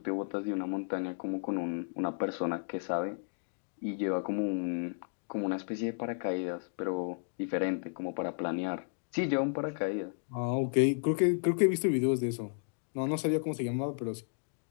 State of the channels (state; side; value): silent; right; digital silence